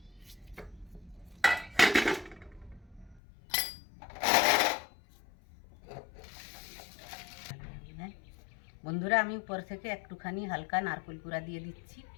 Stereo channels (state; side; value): drops out; right; at 3.2 s